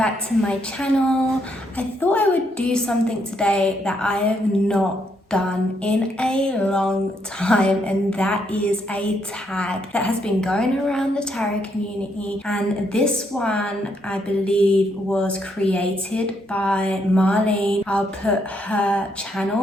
to my channel. I thought I would do something today that I have not done in a long time, and that is a tag that has been going around the tarot community, and this one I believe was created by Marlene. I'll put her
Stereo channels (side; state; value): both; normal; correlation 0.75